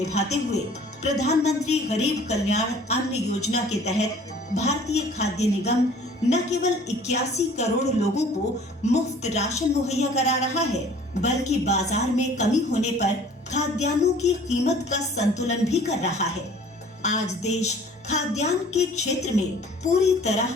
हुए प्रधानमंत्री गरीब कल्याण अन्न योजना के तहत भारतीय खाद्य निगम न केवल 81 करोड़ लोगों को मुफ्त राशन मुहैया करा रहा है, बल्कि बाजार में कमी होने पर खाद्यान्नों की कीमत का संतुलन भी कर रहा है। आज देश खाद्यान्न के क्षेत्र में पूरी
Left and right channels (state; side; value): normal; both; correlation 0.51